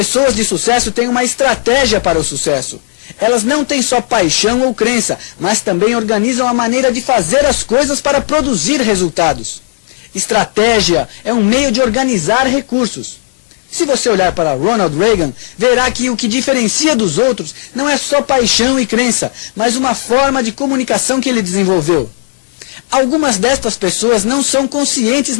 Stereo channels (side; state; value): right; silent; digital silence